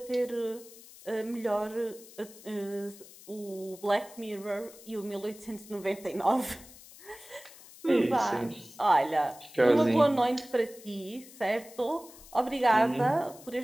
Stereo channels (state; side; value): noise; left; hiss, 20 dB below the sound